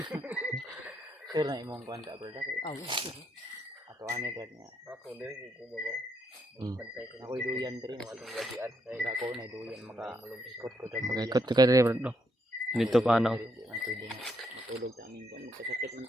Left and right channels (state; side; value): normal; both; correlation 0.76